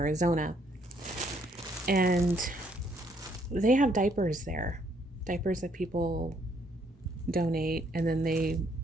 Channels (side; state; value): both; normal; correlation 0.69